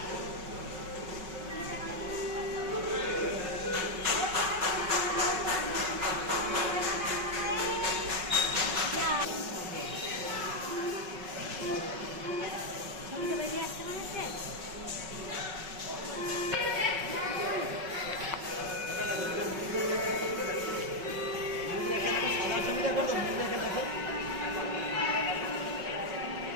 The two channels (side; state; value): left; late; 5.4 ms